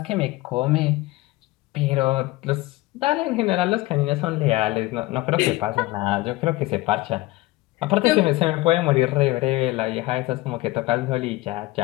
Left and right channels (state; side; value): quieter; right; 19.4 dB